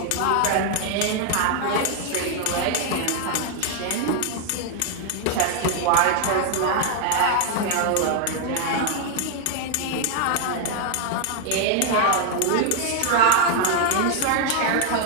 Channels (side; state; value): both; different; correlation 0.00